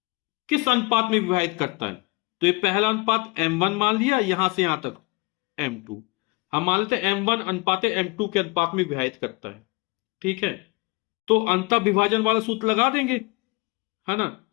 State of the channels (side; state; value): right; quieter; 26.7 dB